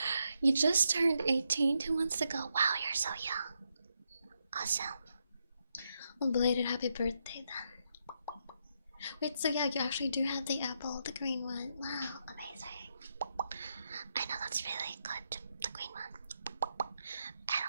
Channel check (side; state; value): both; inverted; correlation -0.82